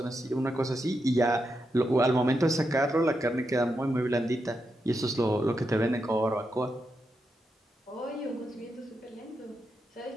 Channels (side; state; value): both; normal; correlation 0.85